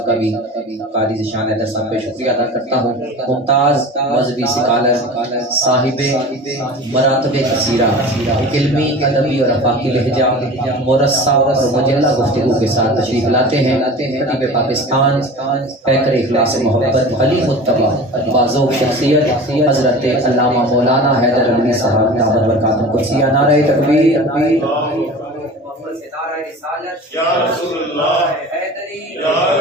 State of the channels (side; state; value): both; normal; correlation 0.37